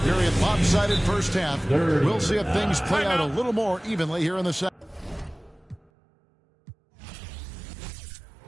very lopsided first half, we'll see if things play out a little more evenly here in the second.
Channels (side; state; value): left; drops out; at 5.9 s